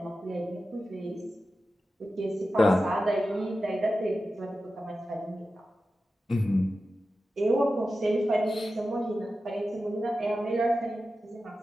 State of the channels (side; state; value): both; normal; correlation 0.92